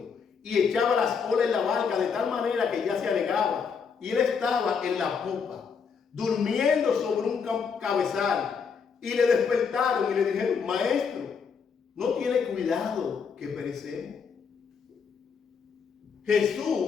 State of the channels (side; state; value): right; quieter; 6.1 dB